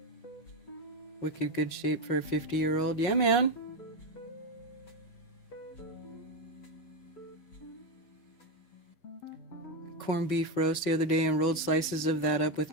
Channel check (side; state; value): right; late; 5.4 ms